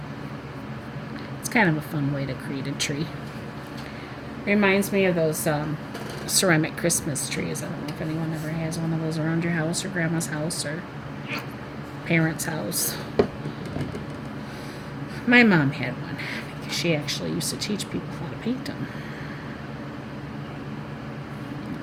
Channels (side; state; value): both; identical; correlation 1.00